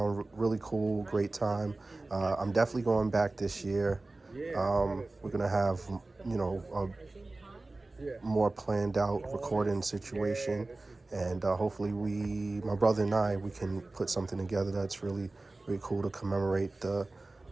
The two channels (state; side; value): quieter; left; 3.1 dB